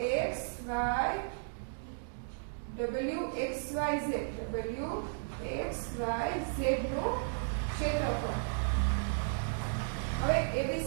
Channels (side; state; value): left; silent; digital silence